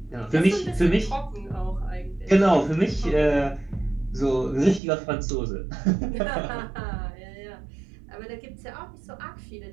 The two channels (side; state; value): left; drops out; at 4.8 s